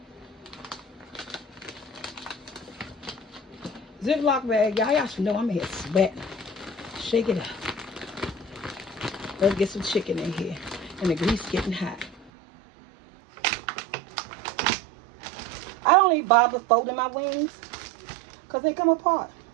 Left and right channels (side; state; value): left; drops out; at 12.3 s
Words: Ziploc bag, y'all should know I'm here sweating. Shake it up. Let's get some chicken in here. And the grease getting hot. I don't even bother folding my wings because they come apart.